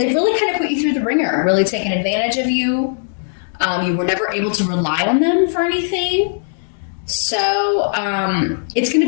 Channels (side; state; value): right; silent; 67 dB below the other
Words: kind of put you through the ringer, really taken advantage of you. You were never able to rely on them for anything. So it's going to